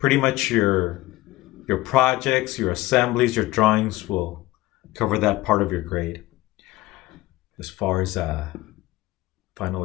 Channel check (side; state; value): right; quieter; 18.0 dB